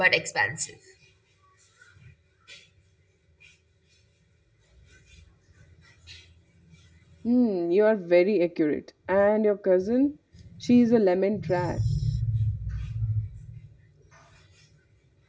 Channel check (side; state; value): both; identical; correlation 1.00